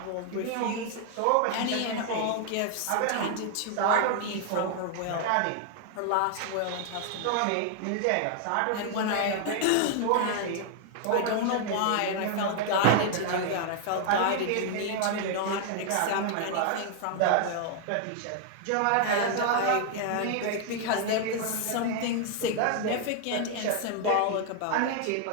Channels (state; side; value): different; both; correlation 0.00